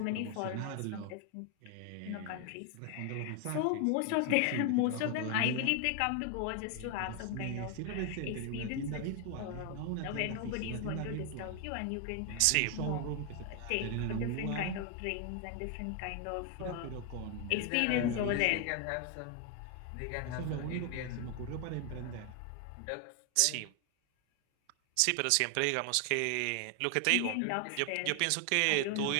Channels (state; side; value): different; both; correlation 0.00